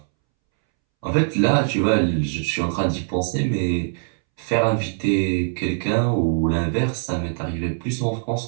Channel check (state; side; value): silent; left; 64 dB below the other